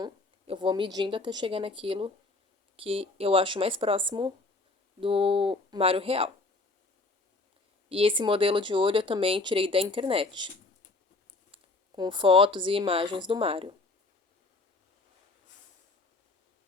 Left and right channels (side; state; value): right; quieter; 3.3 dB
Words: eu vou medindo até chegar naquilo que eu acho mais próximo do Mário real. E esse modelo de olho eu também tirei da internet, com fotos e imagens do Mário.